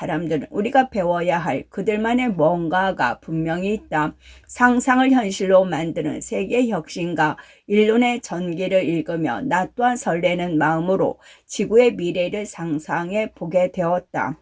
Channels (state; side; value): identical; both; correlation 1.00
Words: 우리가 배워야 할 그들만의 뭔가가 분명히 있다. 상상을 현실로 만드는 세계 혁신가 일론의 전기를 읽으며 나 또한 설레는 마음으로 지구의 미래를 상상해 보게 되었다.